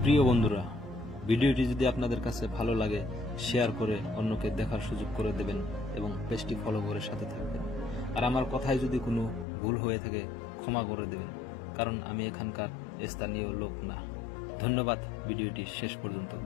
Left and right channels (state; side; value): drops out; right; at 9.5 s